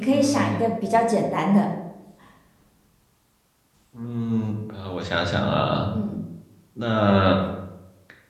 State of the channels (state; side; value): identical; both; correlation 1.00